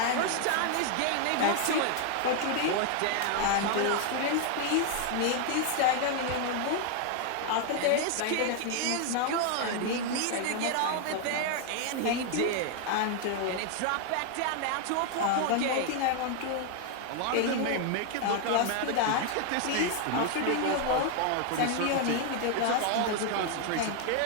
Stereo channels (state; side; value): different; both; correlation 0.00